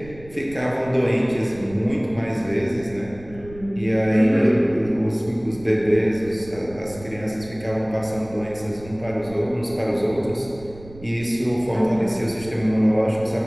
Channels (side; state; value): right; noise; rumble, 19 dB below the sound